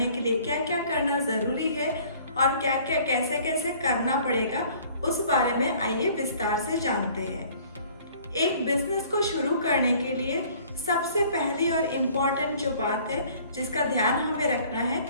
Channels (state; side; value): inverted; both; correlation -0.54